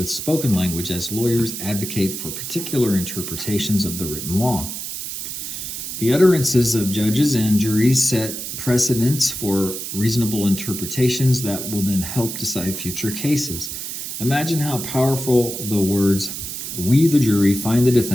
spoken language as lawyers advocate for particular interpretations of the written law. The utterances of judges and juries set precedents for reasonable interpretations that will then help decide future cases. Imagine how powerful the words, we the jury find the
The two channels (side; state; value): right; noise; hiss, 6 dB below the sound